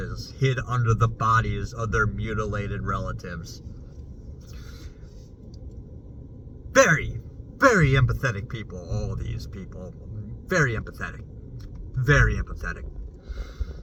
hid under the bodies of their mutilated relatives. Very, very empathetic people, all these people. Very empathetic. Very empathetic.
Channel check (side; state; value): both; identical; correlation 1.00